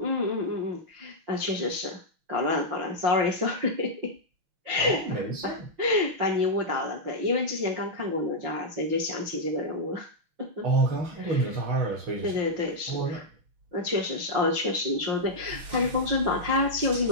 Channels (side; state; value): left; late; 5.7 ms